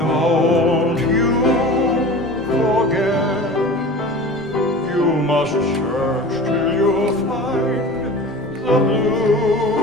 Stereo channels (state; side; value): normal; both; correlation 0.36